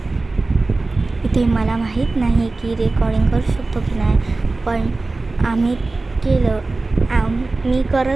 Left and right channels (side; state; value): left; quieter; 3.4 dB